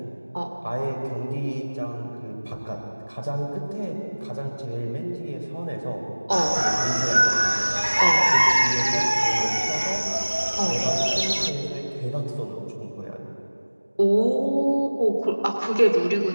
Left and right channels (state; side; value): inverted; both; correlation -1.00